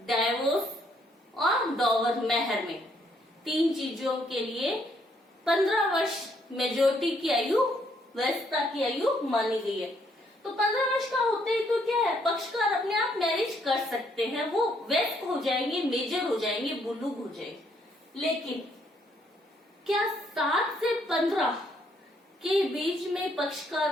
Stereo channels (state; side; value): normal; both; correlation 0.70